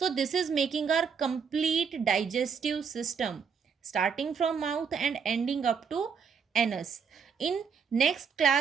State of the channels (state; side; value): quieter; left; 6.4 dB